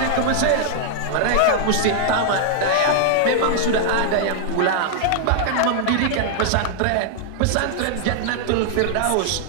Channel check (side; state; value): both; different; correlation -0.01